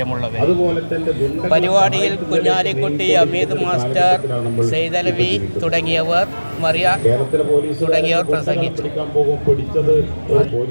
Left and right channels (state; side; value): inverted; both; correlation -1.00